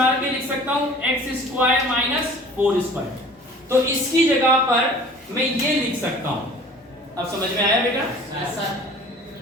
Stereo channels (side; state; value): both; normal; correlation 0.46